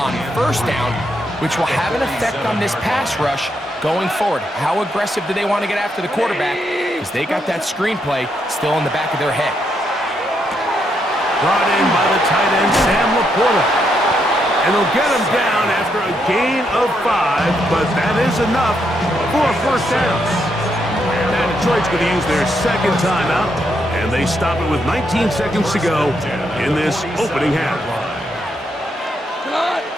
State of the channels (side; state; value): both; normal; correlation 0.78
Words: 1st down, which will have an effect on this pass rush going forward. How aggressive do they want to get after the quarterback? Because they got that screen play still in the back of their head. Brought in by the tight end, Sam Laporta. And they'll get him down after a gain of 5, but that is enough for a 1st down. Now Detroit's going to use their 2nd timeout, and they stop it with 19 seconds to go in this opening half.